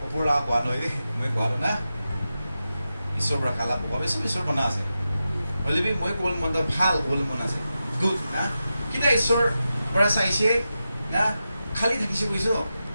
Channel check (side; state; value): both; inverted; correlation -0.91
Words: opura ko ano ide mo ko ano na. Isobra kala po ko isor mana ase. Well, we mo ko mo do phal ko mo na ase. Good na. Kita isor para sa ise na khali thakise ko iso.